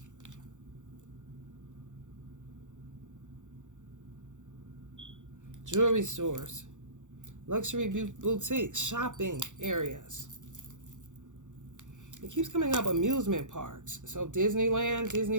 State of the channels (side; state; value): left; late; 0.85 ms